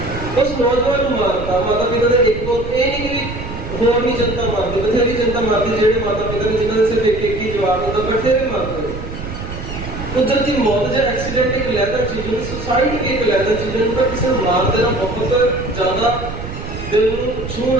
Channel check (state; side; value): noise; right; rumble, 9 dB below the sound